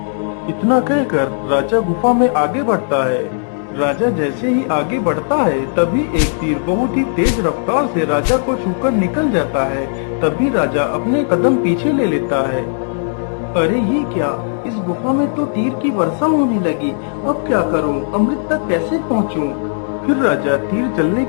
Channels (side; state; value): right; silent; digital silence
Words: इतना कहकर राजा गुफा में आगे बढ़ता है। राजा जैसे ही आगे बढ़ता है, तभी एक तीर बहुत ही तेज रफ्तार से राजा को छूकर निकल जाता है। तभी राजा अपने कदम पीछे ले लेता है। अरे ये क्या, इस गुफा में तो तीर की वर्षा होने लगी। अब क्या करूं, अमृत तक कैसे पहुंचूं? फिर राजा तीर चलने